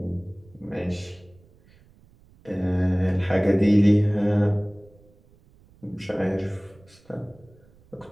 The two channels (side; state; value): right; noise; rumble, 28 dB below the sound